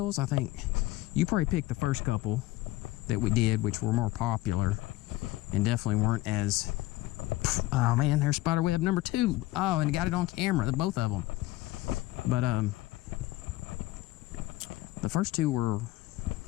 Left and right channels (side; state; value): right; quieter; 17.8 dB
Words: I think you probably picked the first couple that we did, which were more popular and definitely weren't as... Oh man, there's spiderweb number 2. Oh, and got it on camera, both of them. But the first 2 were,